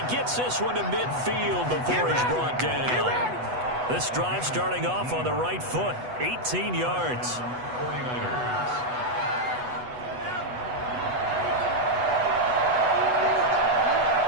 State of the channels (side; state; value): left; late; 8.1 ms